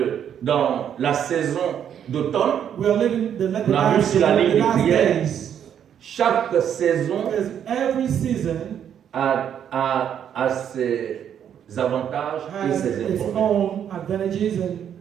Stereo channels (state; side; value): quieter; left; 9.1 dB